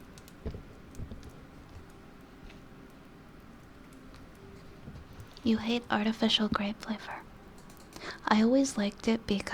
You hate artificial grape flavor. I always liked it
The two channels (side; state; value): both; identical; correlation 1.00